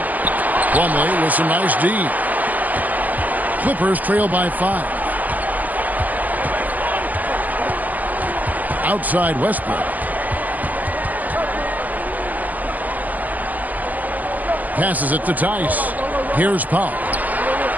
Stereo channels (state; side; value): late; left; 0.081 ms